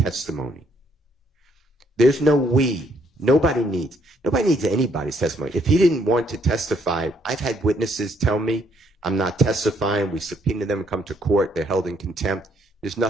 There's no we. Nobody needs anybody's testimony. If he didn't want to testify, I've had witnesses tell me, I'm not testifying. We subpoena them and come to court. They're held in contempt. There's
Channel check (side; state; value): both; normal; correlation 0.69